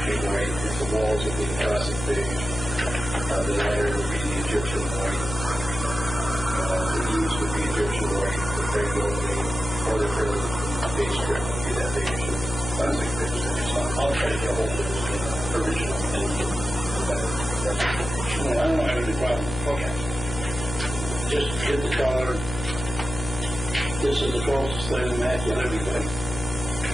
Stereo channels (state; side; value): noise; left; hum, 8 dB below the sound